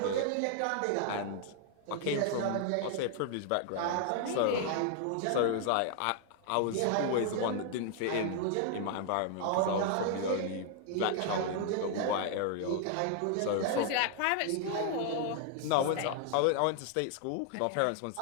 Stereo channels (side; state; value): both; different; correlation 0.00